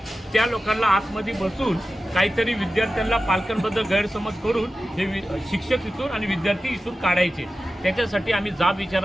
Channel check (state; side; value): normal; both; correlation 0.94